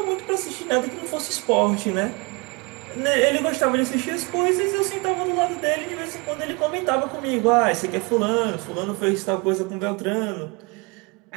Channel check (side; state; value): left; quieter; 29.1 dB